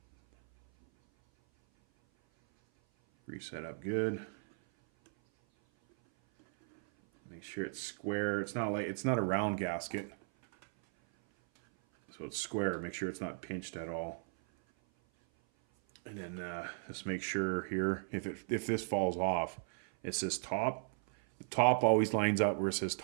Grease that up good. Make sure it's square. It's not a round gasket, so it's square. Make sure it's not pinched at all. And then just make sure here, if this falls off, it says top. The top always lines up where it says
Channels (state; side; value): silent; left; 54 dB below the other